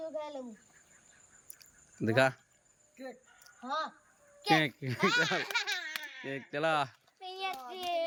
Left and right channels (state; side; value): identical; both; correlation 1.00